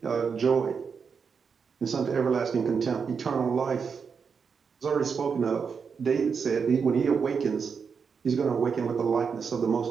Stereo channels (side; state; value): left; quieter; 6.0 dB